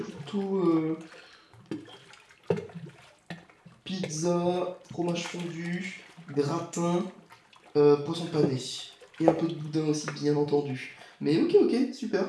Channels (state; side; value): identical; both; correlation 1.00